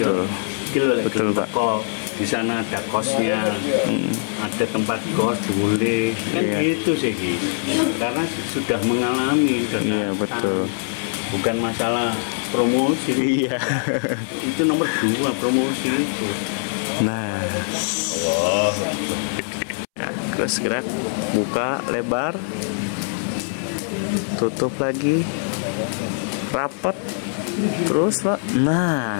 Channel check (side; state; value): right; silent; 64 dB below the other